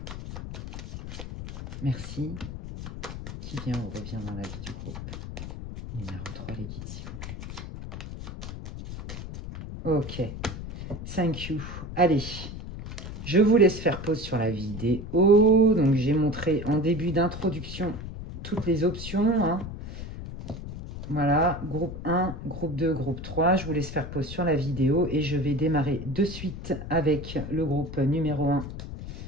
Merci. Qui vient ou revient dans la vie du groupe numéro 3, les guides, s'il vous plaît. Ok. Thank you. Allez. Je vous laisse faire pause sur la vidéo. Donc, j'ai montré en début d'introduction toutes les options. Hein. Voilà, groupe 1, groupe 2, groupe 3. Je vous laisse faire pause sur la vidéo et je vais démarrer de suite avec le groupe numéro 1.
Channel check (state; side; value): noise; left; rumble, 9 dB below the sound